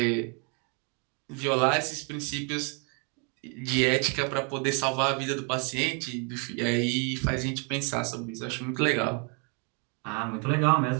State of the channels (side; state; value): left; quieter; 36.8 dB